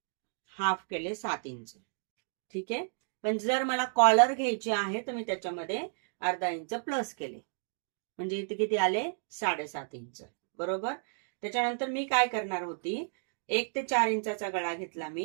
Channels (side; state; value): left; silent; digital silence